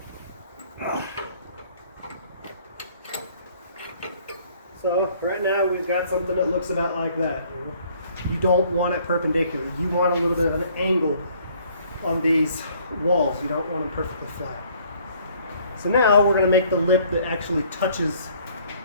So right now we've got something that looks about like that. You don't want it perpendicular. You want a little bit of an angle on these walls. You don't want them perfectly flat. So now we're going to make the lip that actually touches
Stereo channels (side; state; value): both; inverted; correlation -0.60